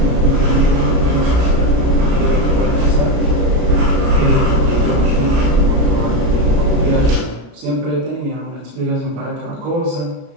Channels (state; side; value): late; left; 35 ms